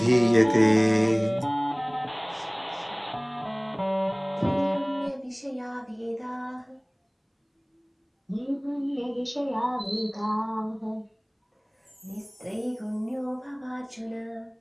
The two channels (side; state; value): both; identical; correlation 1.00